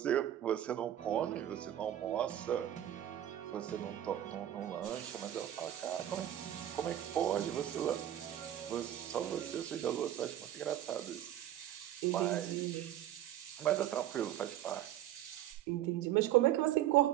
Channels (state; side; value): quieter; left; 12.1 dB